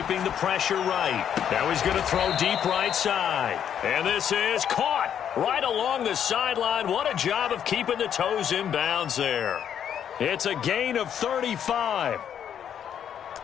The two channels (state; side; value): quieter; right; 9.0 dB